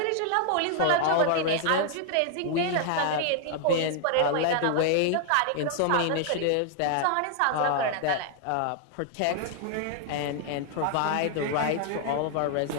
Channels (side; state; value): both; different; correlation 0.00